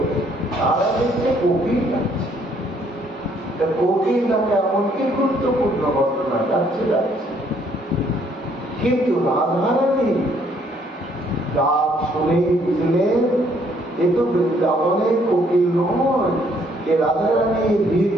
তারা দেখছে কোকিল ডাকছে। কোকিল ডাকে এমন কি গুরুত্বপূর্ণ ঘটনা, ডাকছে ডাকছে। কিন্তু রাধারানী ডাক শুনেই বুঝলেন এ তো বৃন্দাবনের কোকিল নয়, এ রাধারানী বীর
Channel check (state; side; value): normal; both; correlation 0.66